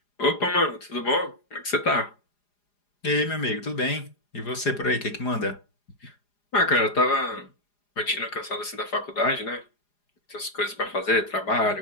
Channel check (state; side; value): late; right; 4.9 ms